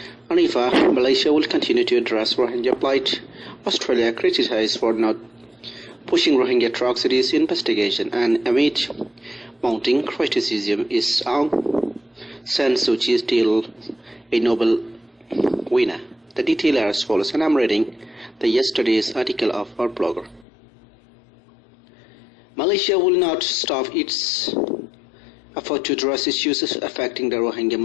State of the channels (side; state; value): right; drops out; at 20.5 s